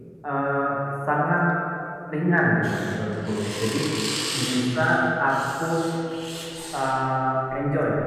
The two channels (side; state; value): both; identical; correlation 1.00